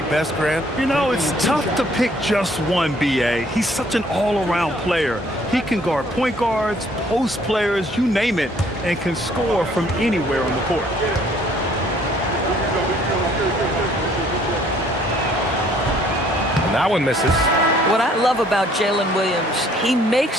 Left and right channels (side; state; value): both; normal; correlation 0.61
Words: best, Grant? You know, it's tough to pick just one, B.A. He's such an all-around player. He can guard point guards, post players, you name it, and can score from anywhere on the court. And that one misses. What I love about Jalen Williams, he